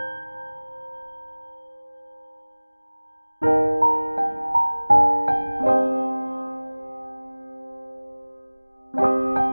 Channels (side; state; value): both; inverted; correlation -1.00